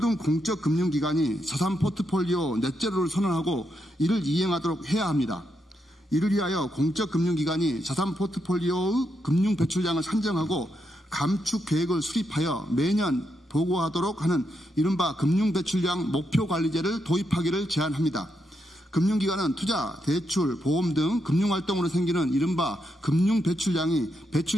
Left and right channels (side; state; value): both; normal; correlation 0.82